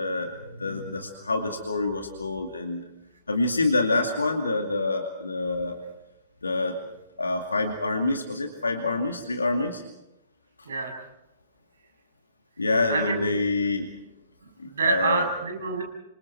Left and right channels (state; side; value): inverted; both; correlation -0.75